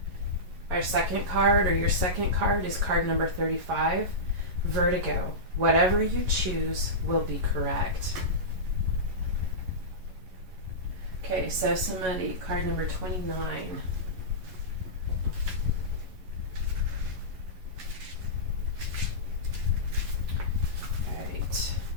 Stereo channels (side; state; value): left; late; 11 ms